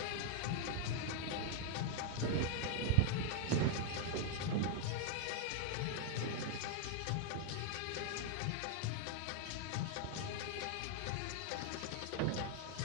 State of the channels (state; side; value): different; both; correlation 0.00